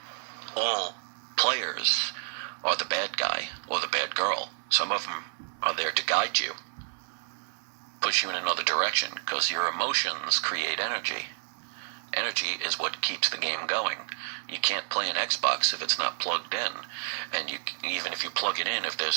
all players are the bad guy or the bad girl. Some of them are there to guide you, push you in another direction, because your emotions create energy. Energy is what keeps the game going. You can't play an Xbox if it's not plugged in. And even if you plug it in, if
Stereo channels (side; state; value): left; silent; digital silence